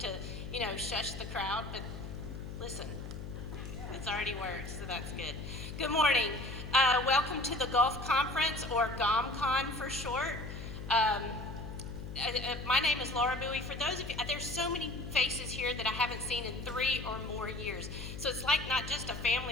shush the crowd, but listen, it's already worked, so that's good. Good morning. Welcome to the Gulf Conference, or GOMCON for short. My name is Laura Bowie. For those of you, there's so many faces here that I haven't seen in 3 or more years. So it's like not just a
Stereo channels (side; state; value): left; noise; hum, 8 dB below the sound